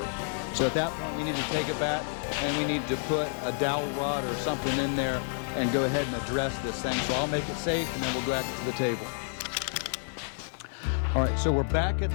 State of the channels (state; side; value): silent; right; 56 dB below the other